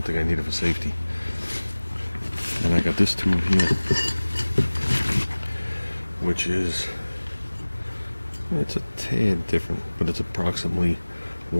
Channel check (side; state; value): both; inverted; correlation -1.00